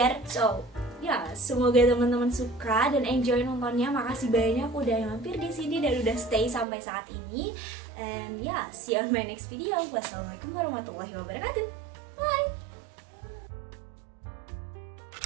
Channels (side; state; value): left; drops out; at 6.7 s